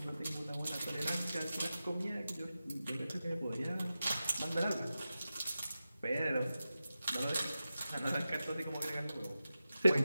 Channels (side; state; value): both; inverted; correlation -0.93